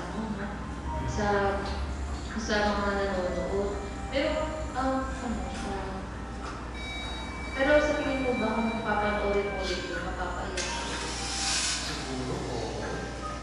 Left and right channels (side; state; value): both; identical; correlation 1.00